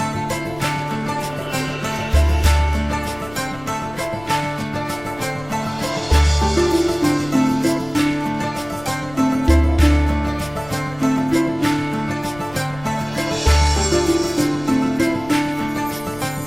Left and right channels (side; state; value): left; noise; rumble, 19 dB below the sound